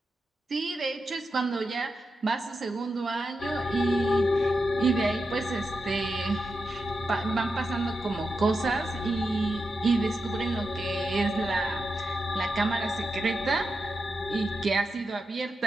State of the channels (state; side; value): normal; both; correlation 0.88